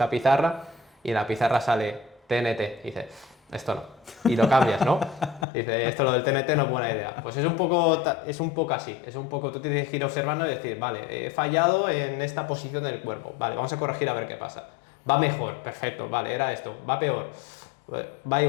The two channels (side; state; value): right; drops out; at 5.5 s